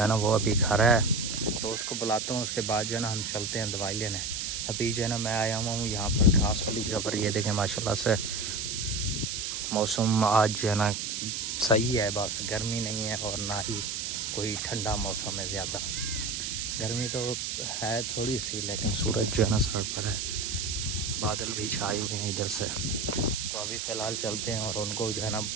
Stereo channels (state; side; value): noise; right; hiss, 3 dB below the sound